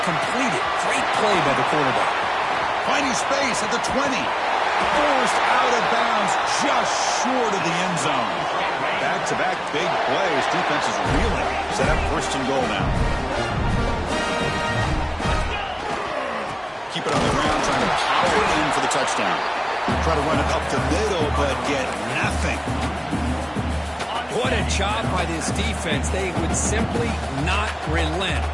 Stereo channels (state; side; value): identical; both; correlation 1.00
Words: complete it. Great play by the quarterback. Finding space at the 20. Forced out of bounds, just short of the end zone. Back-to-back big plays. Defense is reeling. Set up first and goal now. Keep it on the ground, trying to power it in for the touchdown. Try to run it up the middle, but get nothing. What a job by this defense. They would simply not relent.